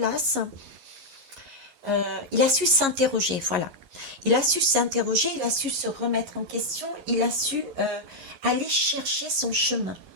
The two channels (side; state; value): left; late; 11 ms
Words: il a su s'interroger, voilà. Il a su s'interroger, il a su se remettre en question, il a su aller chercher son chemin.